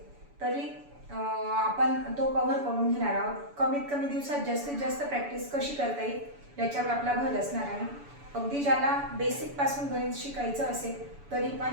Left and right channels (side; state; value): left; late; 7.0 ms